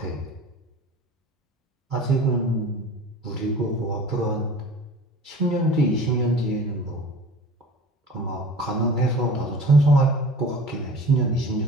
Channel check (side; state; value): both; normal; correlation 0.41